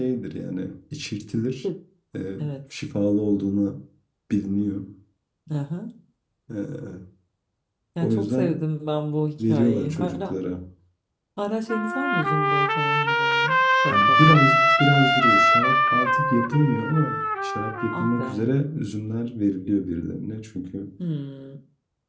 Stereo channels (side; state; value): both; identical; correlation 1.00